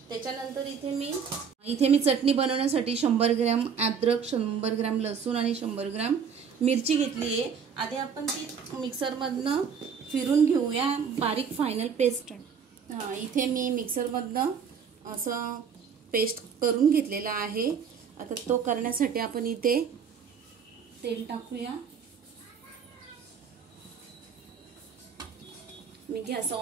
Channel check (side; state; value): left; quieter; 6.7 dB